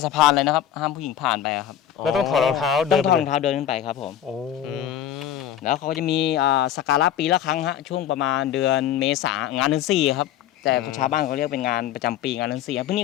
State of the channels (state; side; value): quieter; right; 10.5 dB